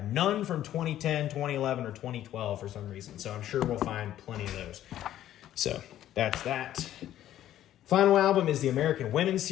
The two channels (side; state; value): right; quieter; 12.3 dB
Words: none from 2010, 2011, or 2012 for some reason. So I'm sure we'll find plenty of those. So that's that. Final album is the American Women